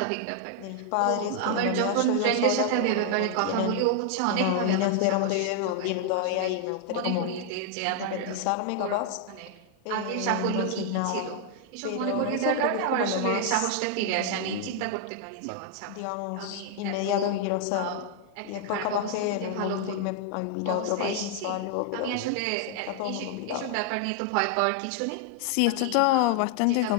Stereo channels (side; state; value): both; different; correlation 0.00